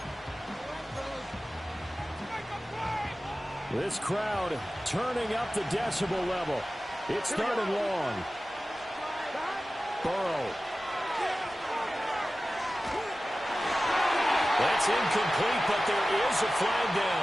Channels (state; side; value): normal; both; correlation 0.96